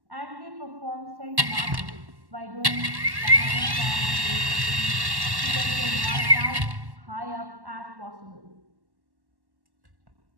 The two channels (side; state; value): left; late; 1.1 ms